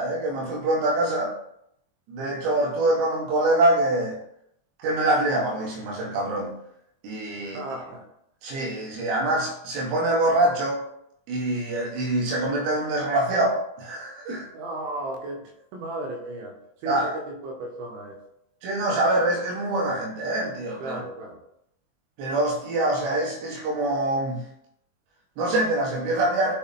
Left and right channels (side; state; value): left; late; 23 ms